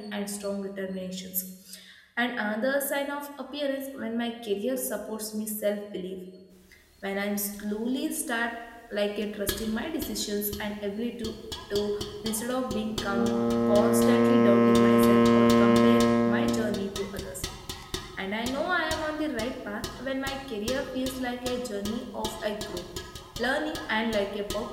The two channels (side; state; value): both; identical; correlation 1.00